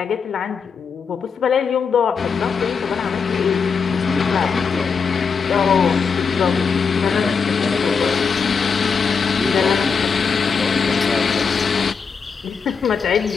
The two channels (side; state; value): right; quieter; 5.7 dB